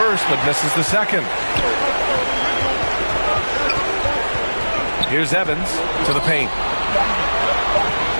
but misses the second. Here's Evans to the paint.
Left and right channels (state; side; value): inverted; both; correlation -1.00